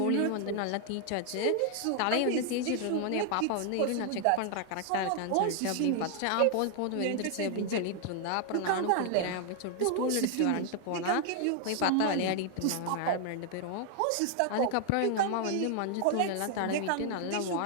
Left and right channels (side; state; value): both; different; correlation 0.00